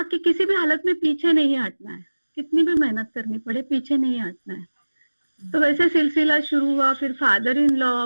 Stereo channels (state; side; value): inverted; both; correlation -1.00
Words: कि किसी भी हालत में पीछे नहीं हटना है, कितनी भी मेहनत करनी पड़े पीछे नहीं हटना है। तो वैसे सिलसिला शुरू हुआ। फिर फादर इन